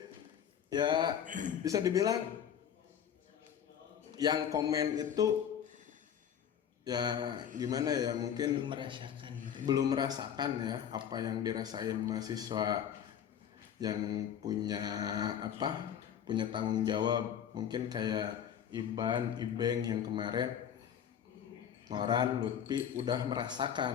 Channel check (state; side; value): quieter; right; 8.9 dB